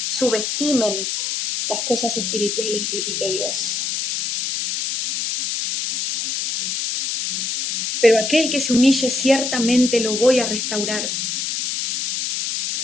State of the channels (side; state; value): left; noise; hiss, 2 dB below the sound